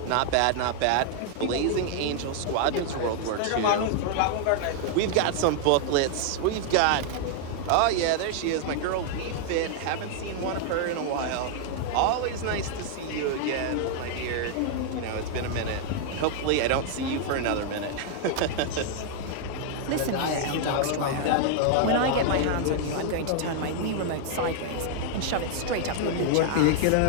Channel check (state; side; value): different; both; correlation 0.00